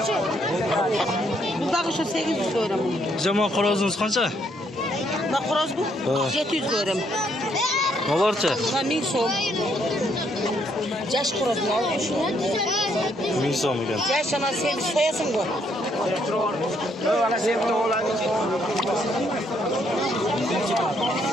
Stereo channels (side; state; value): both; normal; correlation 0.71